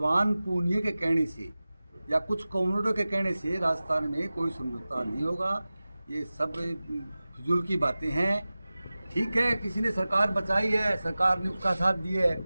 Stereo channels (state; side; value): inverted; both; correlation -0.97